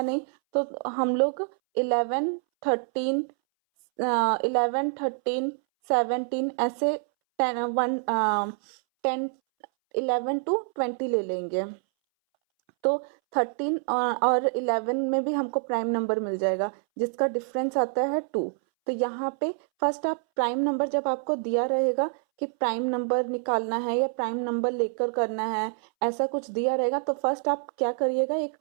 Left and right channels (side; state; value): left; silent; 60 dB below the other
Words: नहीं, तो हम लोग 11 13 11 13 17 ऐसे 10 11 टू 20 ले लेंगे। तो 13 और 11 में भी हमको प्राइम नंबर मिल जाएगा जिसका डिफरेंस आता है 2। तो यहाँ पे फर्स्ट आप प्राइम नंबर, जब आपको दिया रहेगा कि प्राइम नंबर निकालना है या प्राइम नंबर लेकर करना है, ऐसा कुछ दिया रहेगा, तो फर्स्ट आप क्या करिएगा, एक